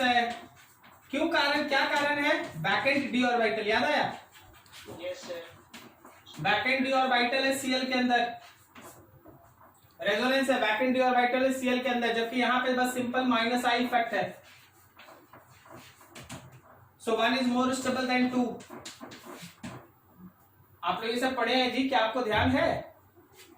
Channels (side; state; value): both; identical; correlation 1.00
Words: क्यों, कारण क्या कारण है? बैकेंड डी ऑर्बिटल, याद आया? Yes sir. Backend D orbital है Cl के अंदर, रेजोनेंस है, बैकेंड डी ऑर्बिटल है Cl के अंदर, जबकि यहाँ पे बस सिंपल माइनस आई इफेक्ट है। सो 1 इज मोर स्टेबल देन 2। आप लोग ये सब पढ़े हैं जी, क्या आपको ध्यान है?